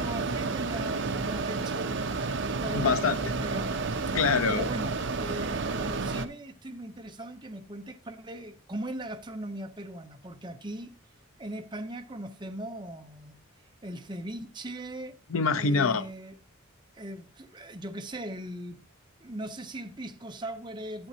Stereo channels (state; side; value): normal; both; correlation 0.11